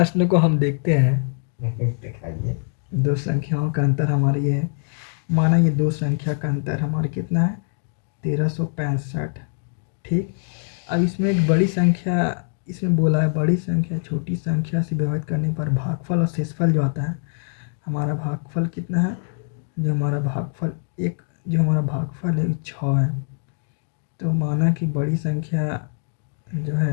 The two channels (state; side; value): silent; right; digital silence